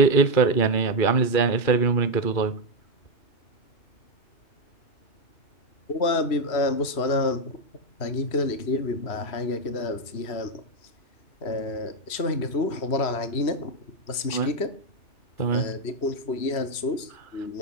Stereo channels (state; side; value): late; right; 3.0 ms